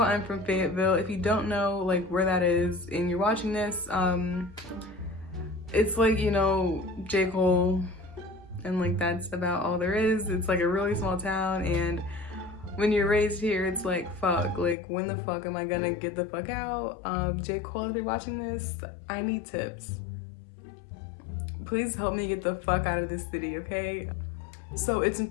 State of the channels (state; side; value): drops out; right; at 14.8 s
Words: from Fayetteville. If you don't know like where that is and you're watching this, it's like, you know, J. Cole, and like that's about all there is. It's like a really small town, and when you're raised here, it's like, fuck, like when the fuck am I gonna get the fuck out? J. Cole, if you're watching this, I need tips. Please help me get the fuck out of this city, okay? So it's